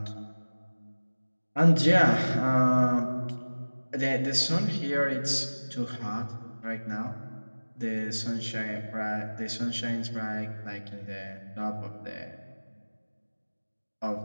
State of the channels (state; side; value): inverted; both; correlation -1.00